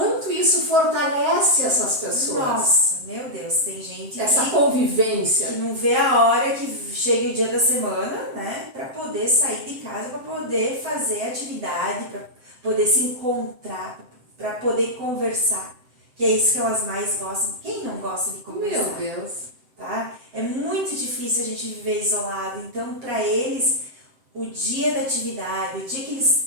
isso fortalece essas pessoas. Nossa, meu Deus, tem gente essa convivência que não vê a hora que chega o dia da semana, né, para poder sair de casa, para poder fazer atividade, para poder se encontrar, para poder conversar, que é isso que elas mais gostam. Quem não gosta de conversar? Meu Deus. Tá? É muito difícil a gente viver isolado, então para eles o dia da atividade, o dia que eles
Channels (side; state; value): left; late; 7.7 ms